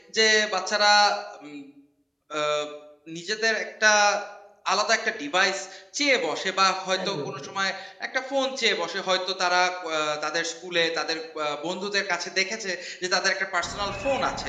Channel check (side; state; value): both; identical; correlation 1.00